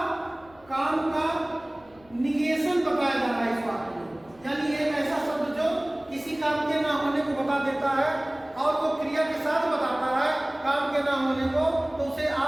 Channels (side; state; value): left; noise; rumble, 28 dB below the sound